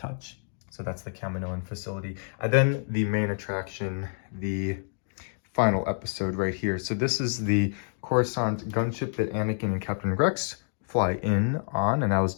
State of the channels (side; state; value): right; silent; digital silence